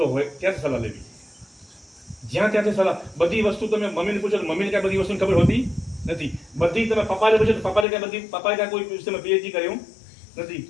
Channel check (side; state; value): right; drops out; at 7.9 s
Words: હોય ત્યાંથી સલાહ લેવી. જ્યાં ત્યાંથી સલાહ, બધી વસ્તુ તમે મમ્મીને પૂછો તો મમ્મીને ક્યાં બધી વસ્તુની ખબર હોતી નથી. બધી તમે પપ્પાને પૂછો તો પપ્પાએ ક્યાં કોઈ વિષયમાં પીએચડી કર્યું નથી